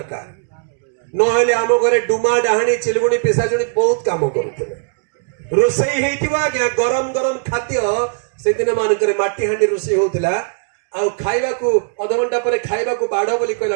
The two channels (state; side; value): silent; left; digital silence